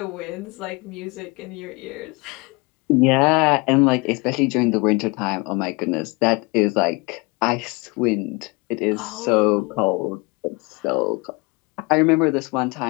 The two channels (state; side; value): quieter; right; 26.9 dB